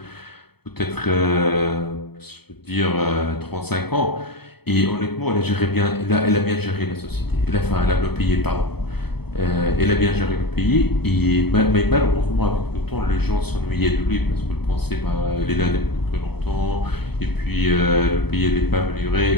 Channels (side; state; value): right; late; 0.97 ms